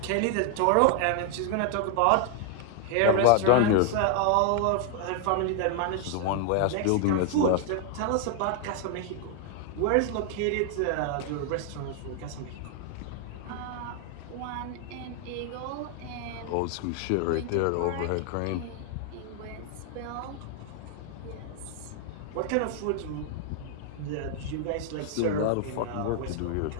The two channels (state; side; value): different; both; correlation 0.00